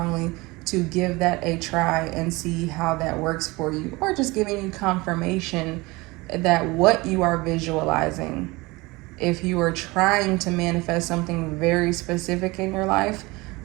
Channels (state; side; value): quieter; left; 23.0 dB